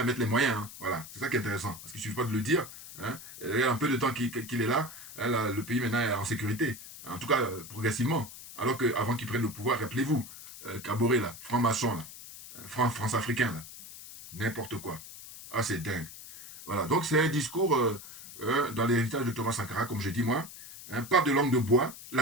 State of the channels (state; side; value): noise; left; hiss, 14 dB below the sound